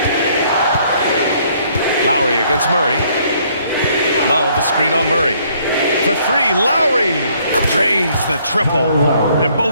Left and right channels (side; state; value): both; inverted; correlation -0.65